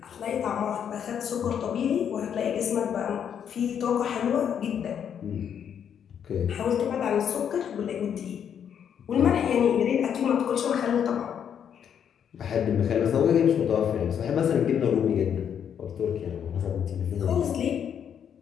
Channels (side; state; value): right; quieter; 8.4 dB